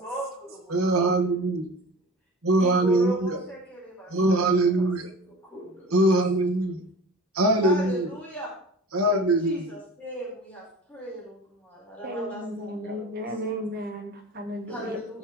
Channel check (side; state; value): both; normal; correlation 0.38